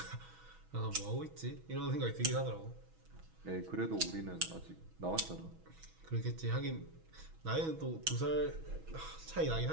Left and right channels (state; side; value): late; left; 6.2 ms